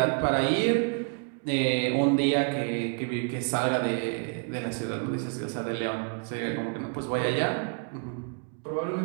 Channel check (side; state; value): left; quieter; 39.0 dB